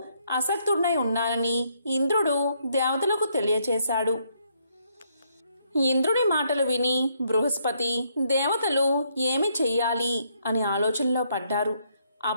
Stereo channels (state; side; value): inverted; both; correlation -0.72